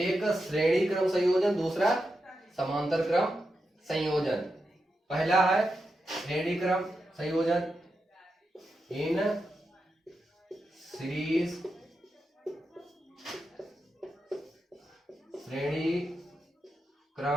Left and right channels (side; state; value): both; normal; correlation 0.88